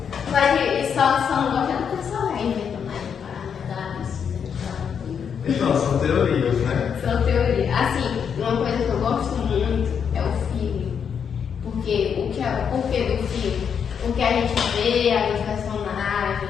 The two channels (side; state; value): right; quieter; 7.3 dB